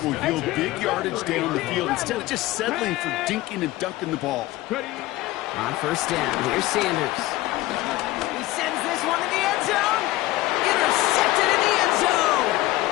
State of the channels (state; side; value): quieter; right; 17.5 dB